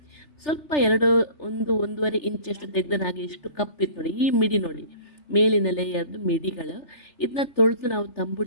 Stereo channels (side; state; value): right; late; 3.4 ms